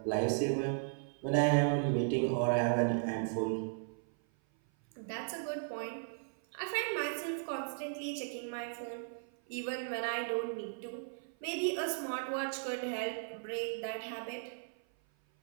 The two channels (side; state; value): left; silent; 54 dB below the other